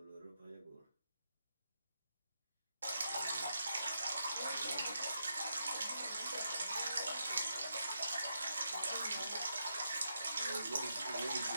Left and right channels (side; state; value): both; inverted; correlation -0.82